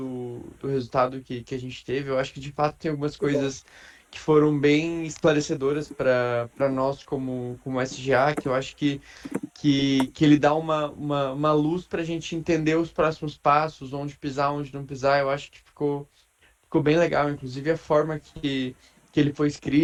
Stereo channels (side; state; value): both; identical; correlation 1.00